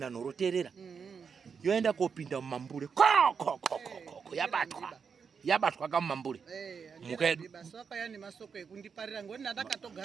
terera yoenda kopinda mumambure yabatwa yabatwa kamambure mukedu basi wakaya nemasoko ekundiparira ngoni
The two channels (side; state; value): left; quieter; 6.1 dB